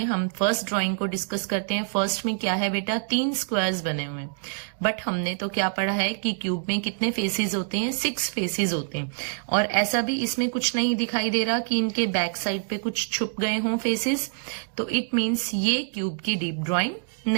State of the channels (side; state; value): left; silent; digital silence